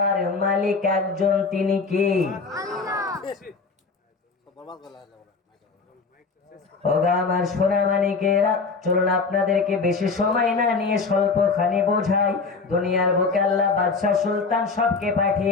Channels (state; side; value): quieter; right; 4.5 dB